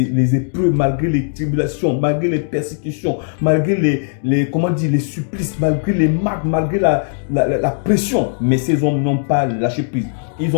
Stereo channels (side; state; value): right; silent; 68 dB below the other